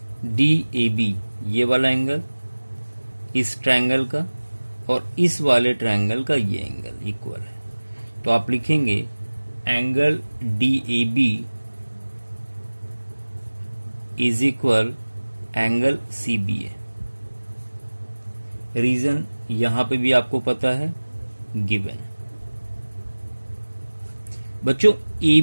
DAB, ये वाला एंगल इस ट्रायंगल का और इस वाले ट्रायंगल का ये एंगल इक्वल है। तो आप लिखेंगे angle DAB is equal angle CBA। Reason यहां पे भी आपको पता है, गिवन। बच्चों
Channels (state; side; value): inverted; both; correlation -1.00